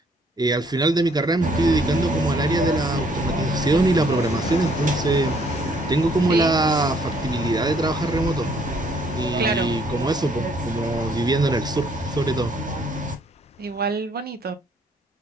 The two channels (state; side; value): normal; both; correlation 0.65